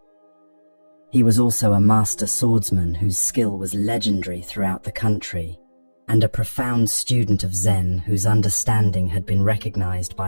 He was also a master swordsman whose skill was legendary throughout the country, and a profound student of Zen whose understanding had been recognized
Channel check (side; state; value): both; inverted; correlation -1.00